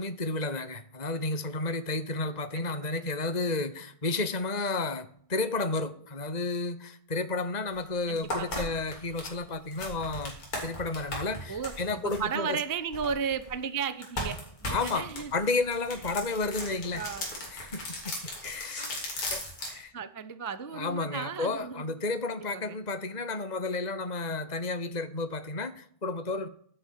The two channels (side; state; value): right; late; 1.9 ms